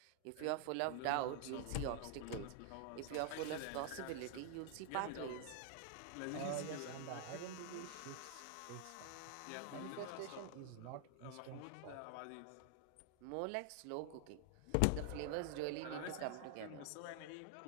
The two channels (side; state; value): both; different; correlation 0.00